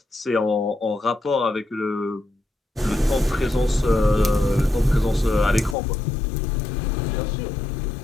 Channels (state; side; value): drops out; right; at 5.8 s